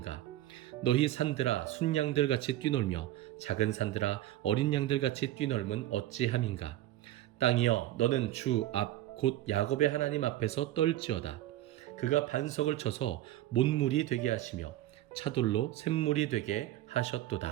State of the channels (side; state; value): left; quieter; 14.2 dB